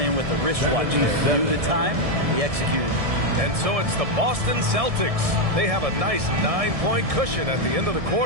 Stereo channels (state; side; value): late; left; 1.7 ms